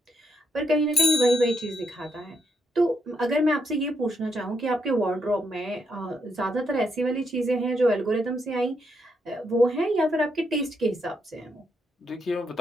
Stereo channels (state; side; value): normal; both; correlation 0.78